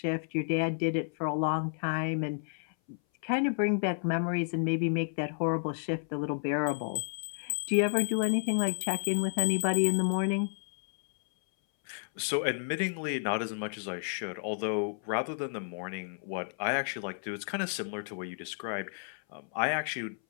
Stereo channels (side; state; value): right; silent; 57 dB below the other